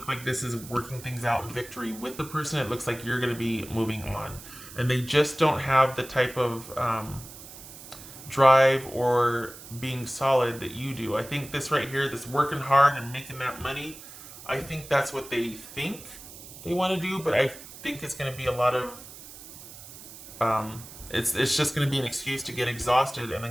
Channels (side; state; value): right; noise; hiss, 16 dB below the sound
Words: like this is working things out in victory with the person. It looks like you're going to be moving on. And they just don't have the type of drive or being solid that you do. I think this right here, this working hard and making that money, I think that's what they think they want to do. But I think it's going to be a lot of... It's just going to be an excuse to get exhausted and